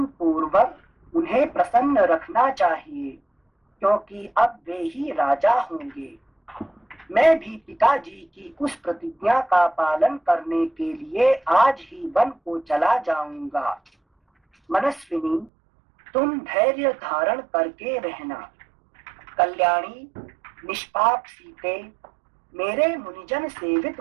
पूर्वक उन्हें प्रसन्न रखना चाहिए, क्योंकि अब वे ही राजा होंगे। मैं भी पिताजी की उस प्रतिज्ञा का पालन करने के लिए आज ही वन को चला जाऊंगा। मनस्विनी, तुम धैर्य धारण करके रहना। कल्याणी, निष्पाप सीते, मेरे मुनिजन सेवित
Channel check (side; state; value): left; drops out; at 15.5 s